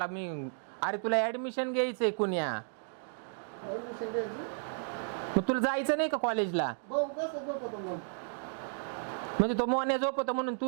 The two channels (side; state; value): left; silent; digital silence